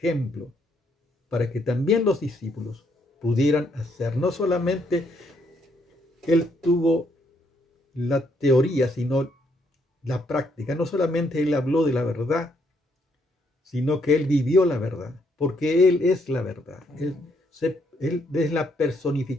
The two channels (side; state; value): both; normal; correlation 0.72